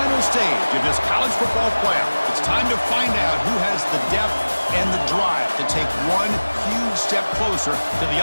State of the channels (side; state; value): both; inverted; correlation -1.00